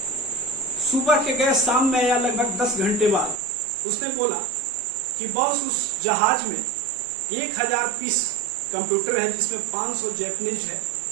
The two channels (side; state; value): left; drops out; at 3.4 s